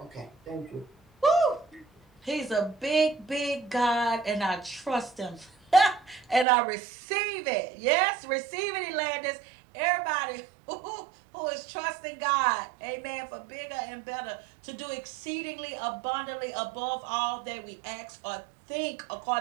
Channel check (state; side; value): drops out; left; at 6.5 s